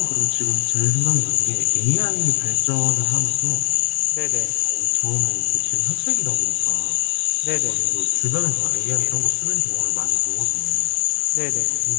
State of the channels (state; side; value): silent; right; digital silence